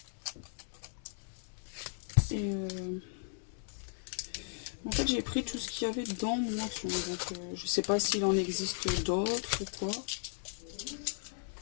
Et en fait, j'ai pris tout ce qu'il y avait dans mon action. Donc je sais pas s'il en existe d'autres ou quoi.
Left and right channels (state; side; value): silent; right; digital silence